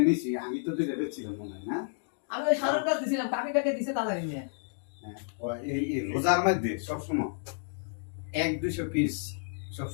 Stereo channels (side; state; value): right; silent; digital silence